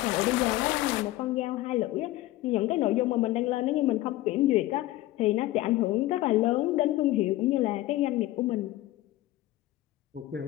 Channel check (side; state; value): right; quieter; 16.5 dB